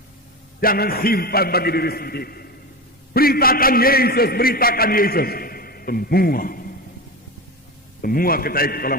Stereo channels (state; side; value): normal; both; correlation 0.23